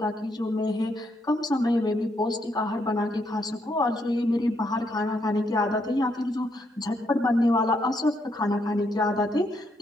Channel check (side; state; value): both; normal; correlation 0.76